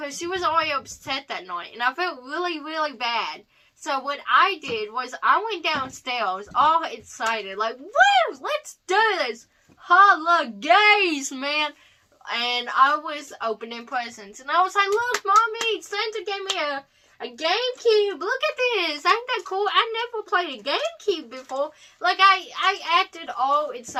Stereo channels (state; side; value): identical; both; correlation 1.00